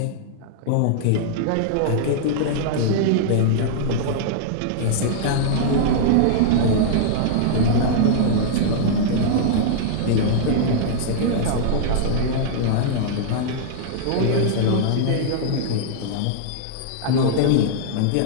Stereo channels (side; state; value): both; different; correlation -0.02